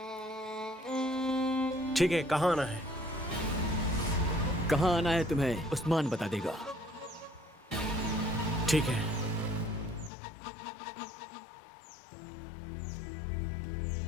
ठीक है, कहाँ आना है? कहाँ आना है तुम्हें उस्मान बता देगा। ठीक है।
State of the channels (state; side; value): drops out; right; at 10.1 s